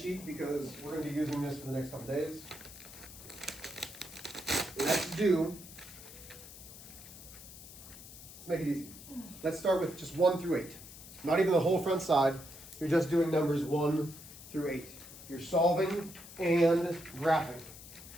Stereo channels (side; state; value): left; noise; hiss, 16 dB below the sound